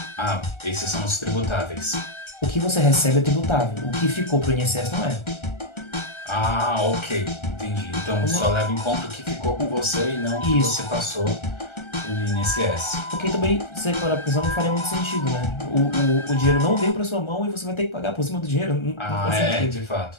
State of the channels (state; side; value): late; right; 1.3 ms